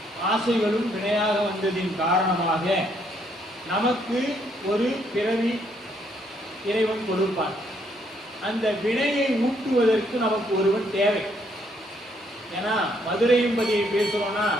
ஆசைகளும் வினையாக வந்ததின் காரணமாக நமக்கு ஒரு பிறவி இறைவன் கொடுப்பான். அந்த வினையை ஊட்டுவதற்கு நமக்கு ஒருவன் தேவை. ஏன்னா மதுரையம்பதியை பேசுறோம்னா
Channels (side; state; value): both; normal; correlation 0.70